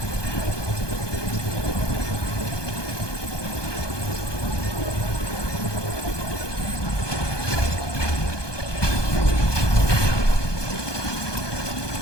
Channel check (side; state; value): right; late; 1.2 ms